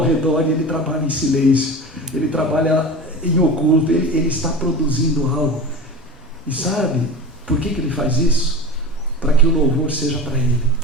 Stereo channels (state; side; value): normal; both; correlation 0.30